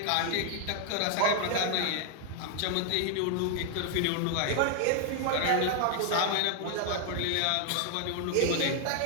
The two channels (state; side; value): different; both; correlation 0.00